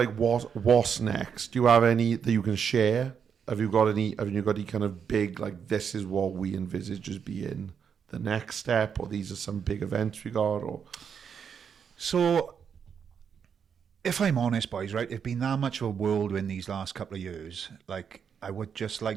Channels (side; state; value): left; quieter; 7.2 dB